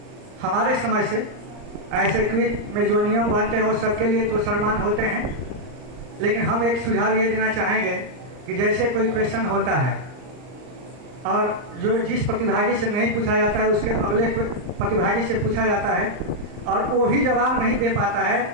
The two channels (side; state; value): left; late; 39 ms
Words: हमारे समय से, ऐसे क्विज में जो नियम बनते हैं वो सबके लिए तो सम्मान होते हैं, लेकिन हम एक सुझाव ये देना चाहेंगे कि जैसे कोई क्वेश्चन होता है और जो जिस प्रतिभागी से नहीं पूछा जाता है उसके अगले प्रतिभागी से पूछा जाता है और वो भी जवाब नहीं दे पाता है,